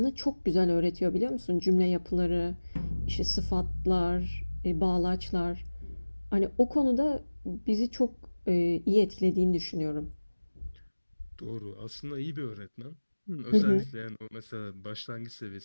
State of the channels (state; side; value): inverted; both; correlation -1.00